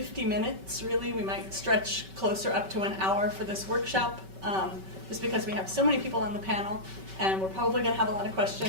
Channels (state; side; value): late; left; 5.2 ms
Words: minutes, really. We might stretch closer up to an hour for this workshop, just because we have so many people on the panel, and we're probably going to have a lot of